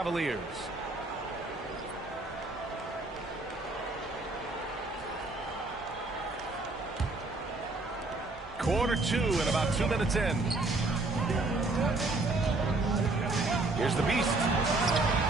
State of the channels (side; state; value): left; quieter; 3.1 dB